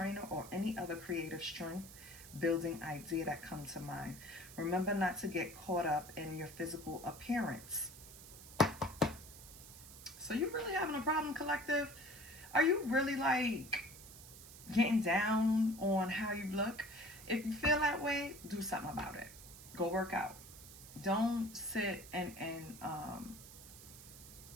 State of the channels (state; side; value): noise; right; hiss, 16 dB below the sound